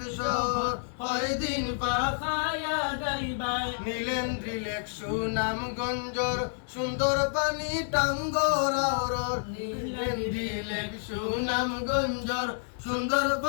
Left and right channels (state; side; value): silent; right; digital silence